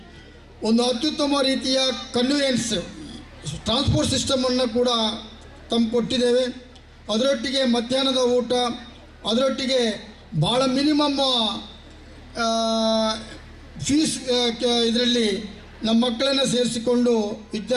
ಒಂದು ಅತ್ಯುತ್ತಮ ರೀತಿಯ ಕನ್ವೀನಿಯನ್ಸ್ ಟ್ರಾನ್ಸ್ಪೋರ್ಟ್ ಸಿಸ್ಟಮನ್ನು ಕೂಡ ಕೊಟ್ಟಿದ್ದೇವೆ. ಅದರೊಟ್ಟಿಗೆ ಮಧ್ಯಾಹ್ನದ ಊಟ, ಅದರೊಟ್ಟಿಗೆ ಭಾಳ ಮಿನಿಮಮ್ ಫೀಸ್ ಇದರಲ್ಲಿ ನಮ್ಮ ಮಕ್ಕಳನ್ನು ಸೇರಿಸಿಕೊಂಡು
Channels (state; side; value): identical; both; correlation 1.00